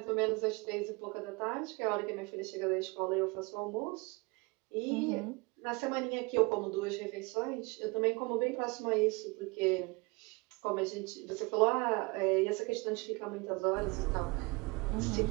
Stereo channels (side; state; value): left; quieter; 27.6 dB